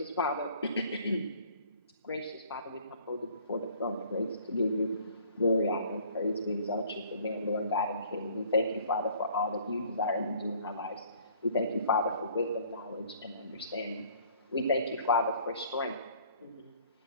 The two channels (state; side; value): inverted; both; correlation -0.55